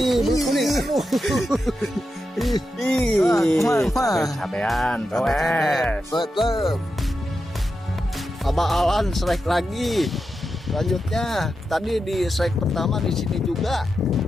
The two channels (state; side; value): normal; both; correlation 0.88